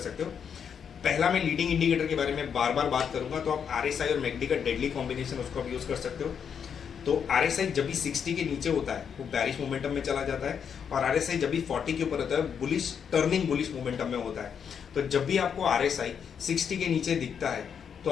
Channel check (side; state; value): right; quieter; 7.4 dB